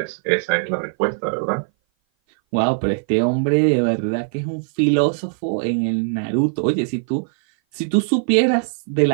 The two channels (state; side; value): silent; left; 58 dB below the other